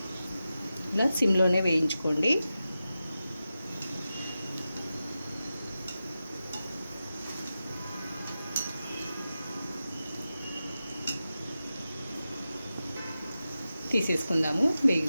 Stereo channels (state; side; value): inverted; both; correlation -0.92